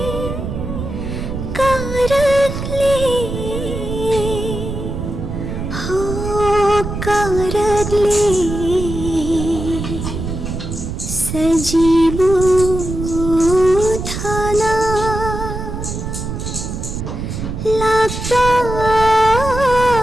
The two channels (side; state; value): right; noise; rumble, 5 dB below the sound